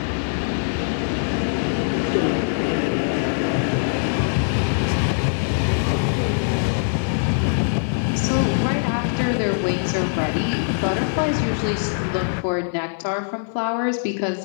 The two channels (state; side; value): silent; right; 61 dB below the other